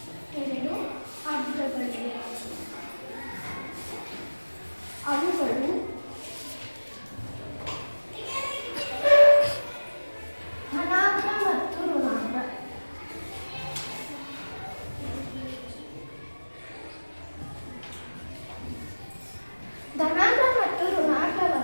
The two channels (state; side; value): inverted; both; correlation -1.00